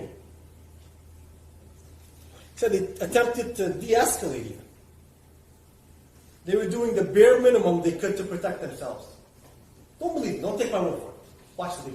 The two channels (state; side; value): identical; both; correlation 1.00